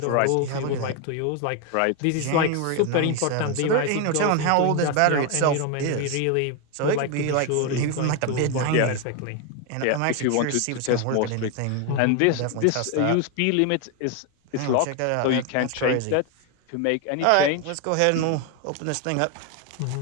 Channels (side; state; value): both; different; correlation 0.01